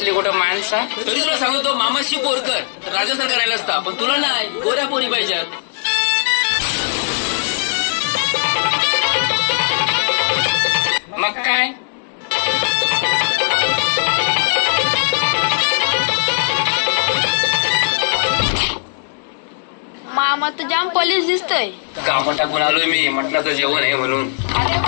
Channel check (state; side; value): silent; right; digital silence